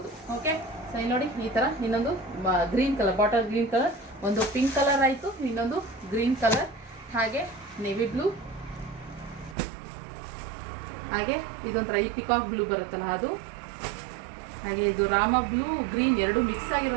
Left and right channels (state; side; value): drops out; left; at 9.6 s